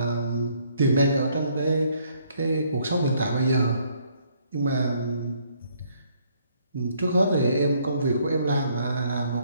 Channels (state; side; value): inverted; both; correlation -0.66